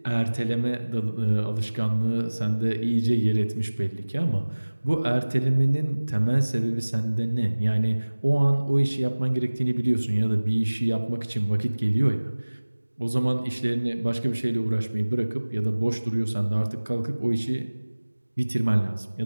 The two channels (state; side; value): inverted; both; correlation -1.00